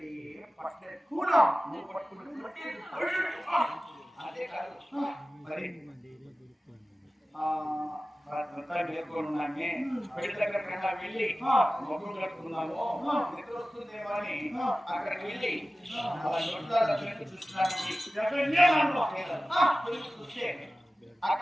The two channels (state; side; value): normal; both; correlation 0.96